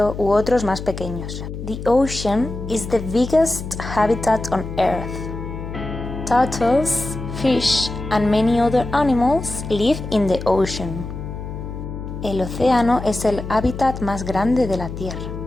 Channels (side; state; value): left; noise; hum, 8 dB below the sound